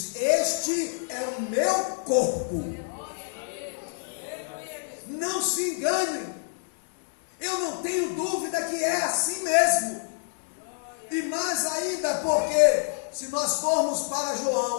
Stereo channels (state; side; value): silent; right; 60 dB below the other